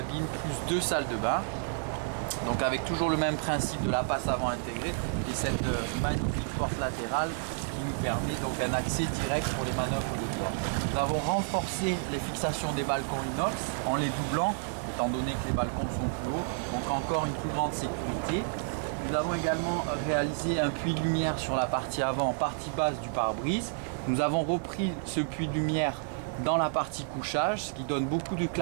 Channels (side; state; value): left; silent; digital silence